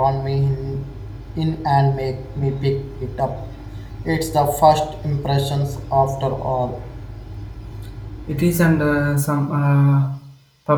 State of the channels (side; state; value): both; identical; correlation 1.00